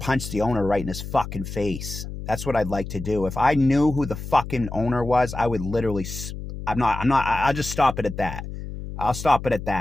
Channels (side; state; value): left; noise; hum, 9 dB below the sound